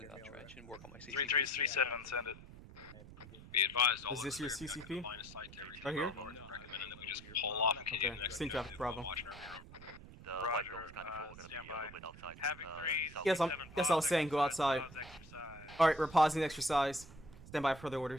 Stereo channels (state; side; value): noise; right; rumble, 17 dB below the sound